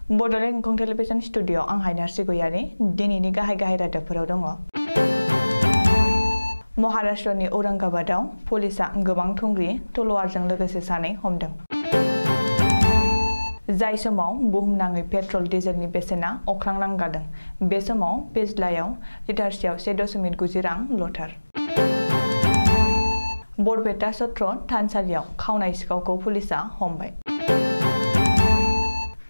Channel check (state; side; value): inverted; both; correlation -1.00